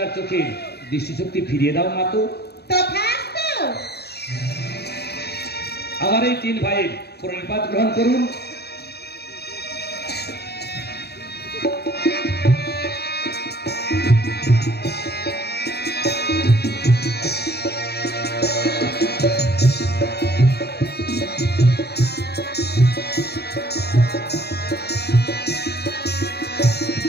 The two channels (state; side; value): late; right; 0.47 ms